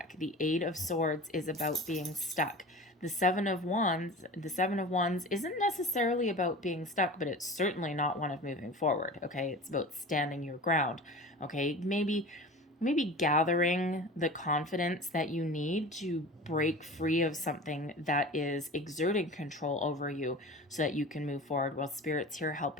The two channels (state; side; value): normal; both; correlation 0.36